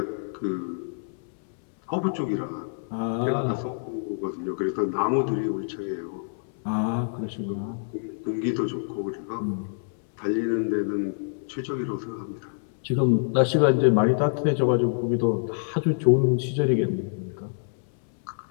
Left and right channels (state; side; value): silent; right; 61 dB below the other